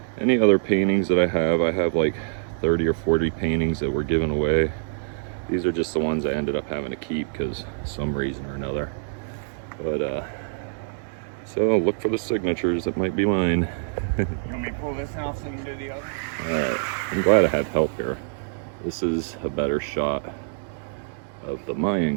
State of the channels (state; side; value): silent; left; digital silence